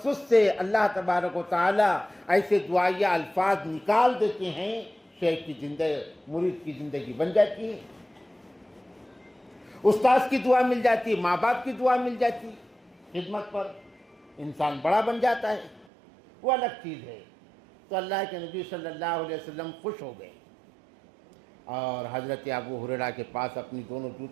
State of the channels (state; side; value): drops out; left; at 15.9 s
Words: سے اللہ تبارک و تعالی ایسے دعائیہ الفاظ نکال دیتے ہیں، شیخ کی زندگی، مرید کی زندگی بن جاتی ہے، استاذ کی دعا مل جاتی، ماں باپ کی دعا مل جاتی، خدمت پر انسان بڑا بن جاتا ہے، وہ الگ چیز ہے۔ تو اللہ کے نبی صلی اللہ علیہ وسلم خوش ہو گئے اور حضرت ابو ہریرہ کے پاس اپنی دونوں